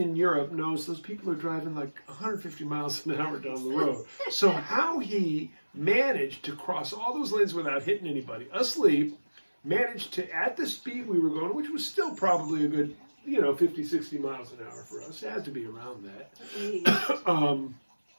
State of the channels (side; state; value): both; inverted; correlation -1.00